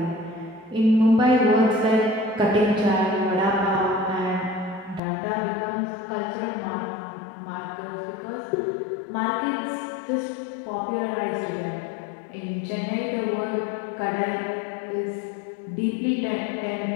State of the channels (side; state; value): right; drops out; at 5.0 s